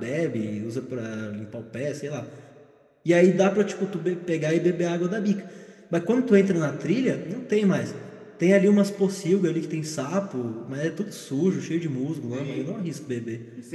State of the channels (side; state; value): both; identical; correlation 1.00